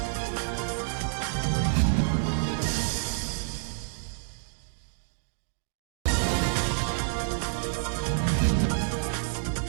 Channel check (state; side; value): silent; left; digital silence